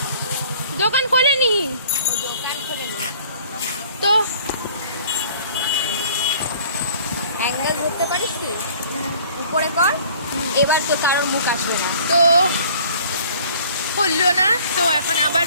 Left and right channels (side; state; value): both; inverted; correlation -0.52